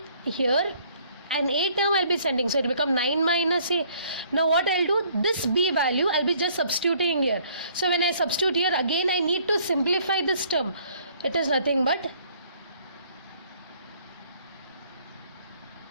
here and A term I'll be sending, so it will become 9 minus A. Now what I'll do, this B value I'll be just substituting here. So when I substitute here, again I need to simplify this term. It is nothing but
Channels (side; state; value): both; inverted; correlation -0.61